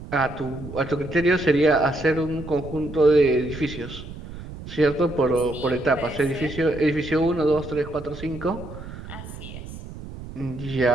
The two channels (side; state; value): right; noise; rumble, 12 dB below the sound